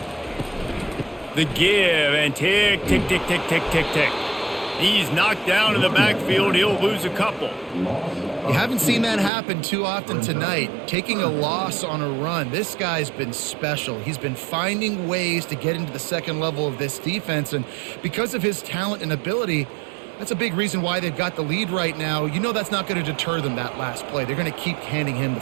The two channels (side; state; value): left; drops out; at 9.3 s